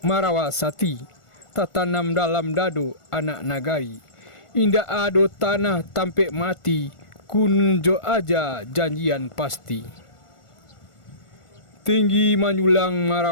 marawasati, tatanam dalam dado anak nagari. Indak ado tanah tampek mati, kunjo aja janjian pasti. Tinggi manyulang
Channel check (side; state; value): right; late; 1.4 ms